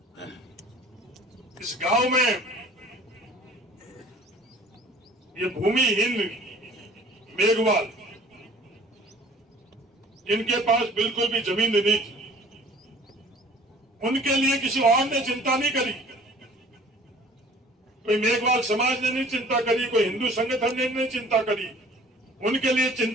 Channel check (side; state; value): both; normal; correlation 0.50